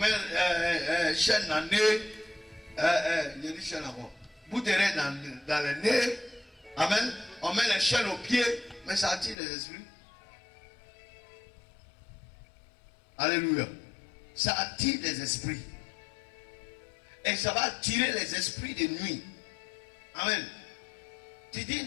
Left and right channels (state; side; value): drops out; right; at 9.3 s